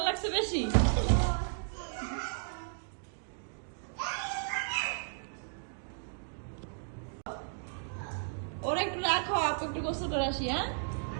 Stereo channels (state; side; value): silent; left; digital silence